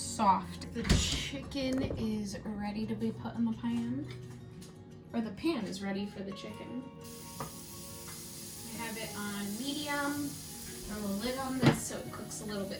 The chicken is ready to be put in the pan, or the pan is ready for the chicken. I have it on medium. Throw a lid on this so it cooks a little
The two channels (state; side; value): identical; both; correlation 1.00